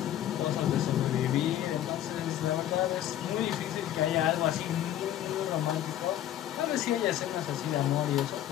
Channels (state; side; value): quieter; right; 12.0 dB